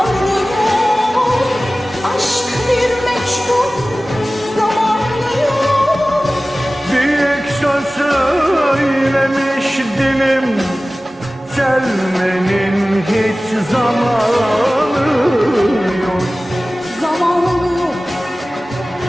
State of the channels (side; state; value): both; normal; correlation 0.97